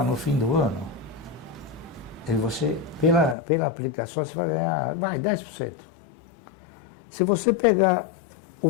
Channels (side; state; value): right; drops out; at 3.4 s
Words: no fim do ano e você, pela aplicação, você vai ganhar 10%. Se você pegar o